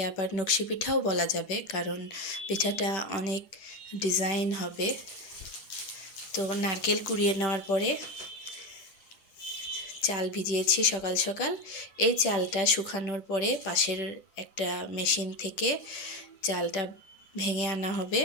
আবার নকশি পিঠাও বলা যাবে, কারণ পিঠাটা অনেক ডিজাইন হবে। তো নারকেল কুড়িয়ে নেওয়ার পরে চাল ভিজিয়েছি সকাল সকাল। এই চালটা শুকানোর পরে পাশের একটা মেশিন থেকে চালটা ভেঙে আনা হবে।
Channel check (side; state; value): right; late; 10 ms